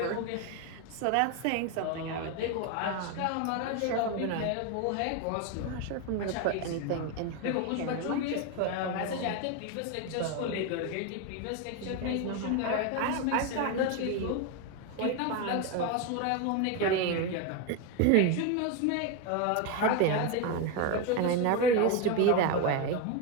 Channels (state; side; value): different; both; correlation 0.02